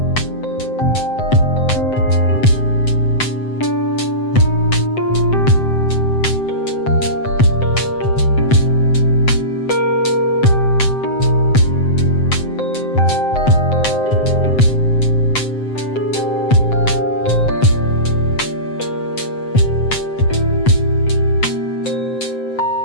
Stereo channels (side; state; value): right; late; 7.8 ms